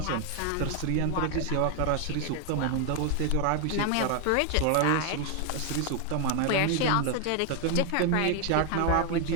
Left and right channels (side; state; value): both; different; correlation 0.01